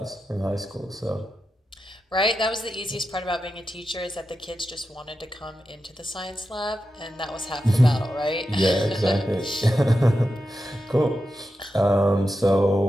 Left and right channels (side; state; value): both; normal; correlation 0.89